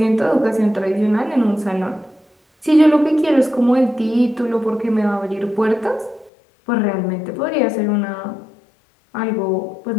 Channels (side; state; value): right; drops out; at 6.3 s